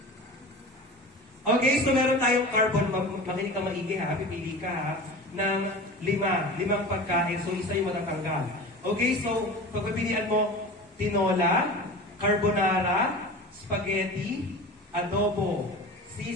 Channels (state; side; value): normal; both; correlation 0.34